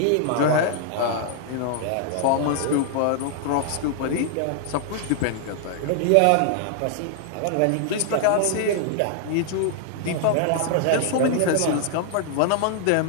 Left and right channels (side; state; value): both; different; correlation 0.00